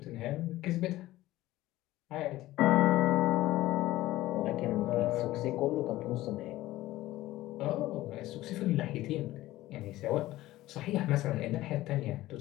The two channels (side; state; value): right; quieter; 16.4 dB